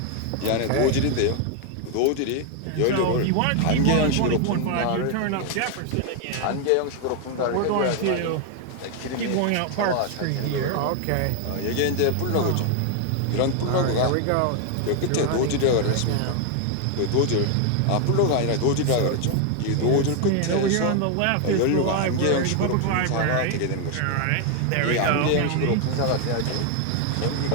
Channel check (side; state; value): both; different; correlation 0.00